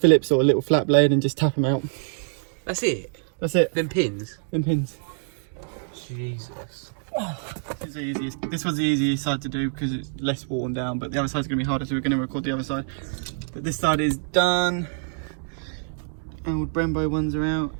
Phillips or a little flat blade and just tap them out. That's it? That's it. Them pins? Them pins. Jesus. This was the easiest side to do because it's less worn down, but the other side's going to be harder, so we're going to record the other side. But this side is done. Old Brembo ones are out.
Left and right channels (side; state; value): left; silent; digital silence